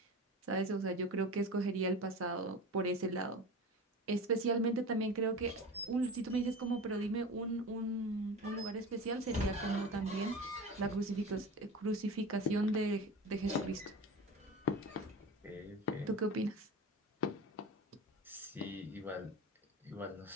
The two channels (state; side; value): normal; both; correlation 0.32